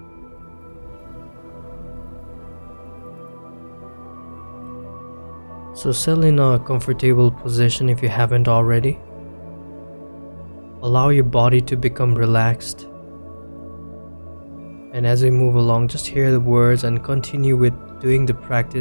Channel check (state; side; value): inverted; both; correlation -1.00